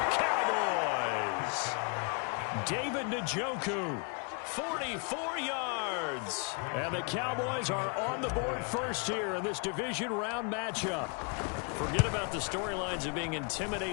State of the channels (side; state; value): right; quieter; 36.0 dB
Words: Cowboys! David Njoku, 44 yards. And the Cowboys are on the board first here in this division round matchup. Forget about the storylines of being